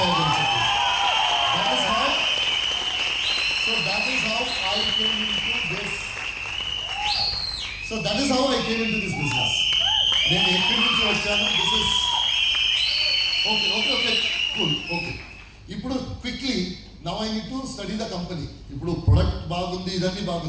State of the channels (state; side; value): identical; both; correlation 1.00